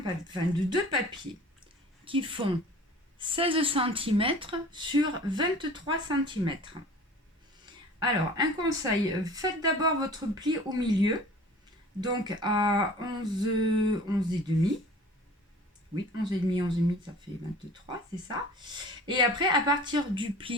deux papiers qui font 16 cm sur 23 cm. Alors, un conseil, faites d'abord votre pli au milieu, donc à 11 et demi. Oui, 11 et demi, 11 et demi, ça fait 23, c'est ça. Et après, à partir du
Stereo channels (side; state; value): both; normal; correlation 0.44